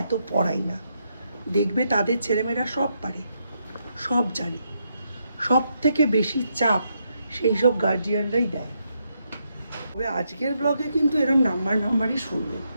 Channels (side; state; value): both; inverted; correlation -0.79